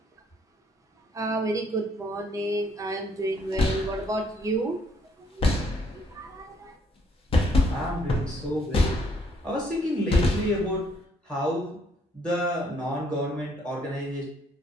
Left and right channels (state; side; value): normal; both; correlation 0.68